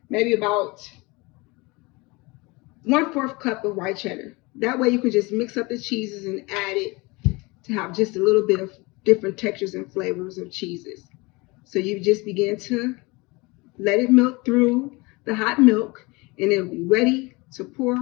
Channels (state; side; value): quieter; right; 24.9 dB